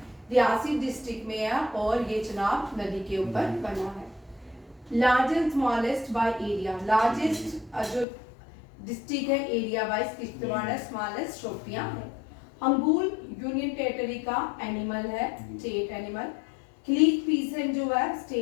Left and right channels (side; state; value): right; drops out; at 8.1 s